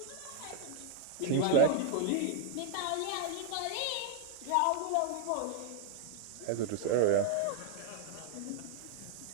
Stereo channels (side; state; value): both; different; correlation 0.00